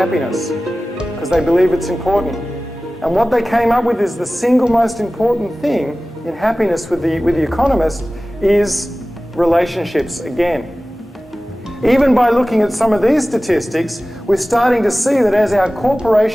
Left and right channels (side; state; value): both; normal; correlation 0.97